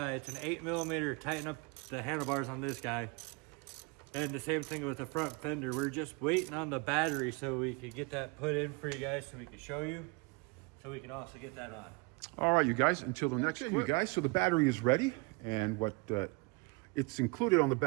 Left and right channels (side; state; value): left; quieter; 29.0 dB